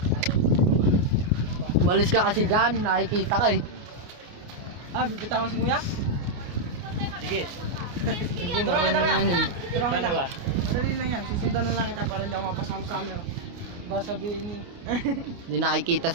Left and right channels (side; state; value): left; late; 29 ms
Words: Umalis ka kasi dyan, nakikita ka eh. Bibitaw mo si Kuya? Sige. Sige, marunong naman yun. Pero Paano ba? Madali lang yan, susundan na lang kita para hindi ako mapasama sa camera. Ba sabihin ni... Hindi nakikita